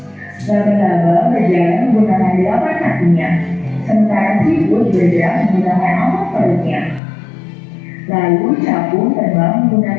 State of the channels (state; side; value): drops out; right; at 7.0 s